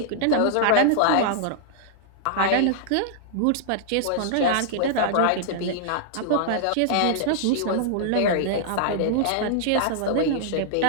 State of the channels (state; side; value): different; both; correlation -0.01